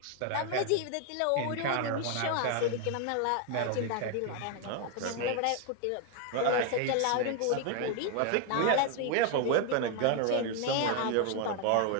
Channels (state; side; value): different; both; correlation 0.01